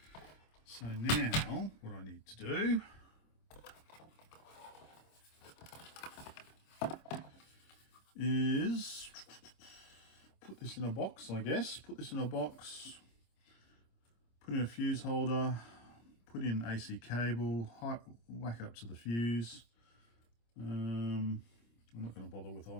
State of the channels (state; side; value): late; right; 26 ms